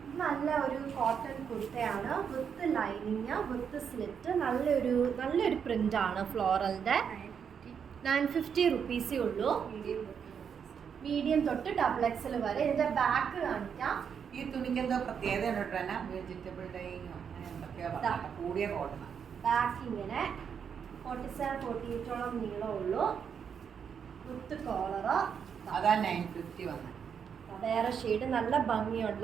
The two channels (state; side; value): quieter; left; 7.2 dB